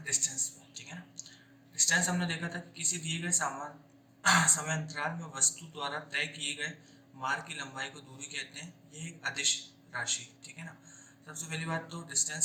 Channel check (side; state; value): both; identical; correlation 1.00